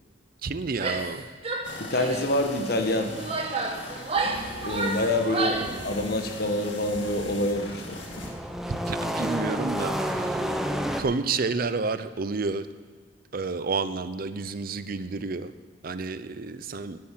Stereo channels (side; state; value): both; normal; correlation 0.23